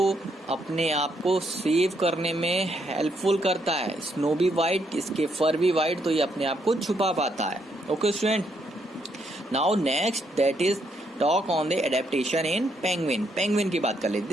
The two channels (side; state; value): both; normal; correlation 0.75